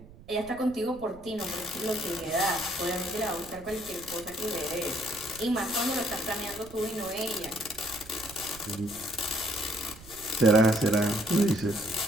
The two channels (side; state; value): right; noise; rumble, 20 dB below the sound